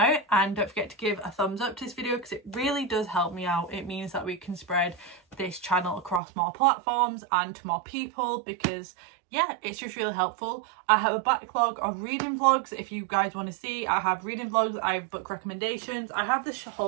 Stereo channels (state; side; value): drops out; left; at 6.2 s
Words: and don't forget to give a thumbs up to this video because it really does help me out. It means that we can spread this channel across more platforms and to more people, because yeah, it's just really helpful. I have a backlog of reading vlogs if you guys want to see. I have reading vlogs, I have book recommendations, I have this